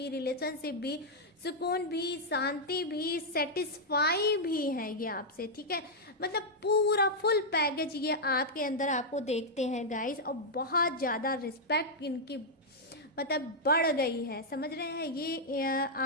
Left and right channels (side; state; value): both; normal; correlation -0.05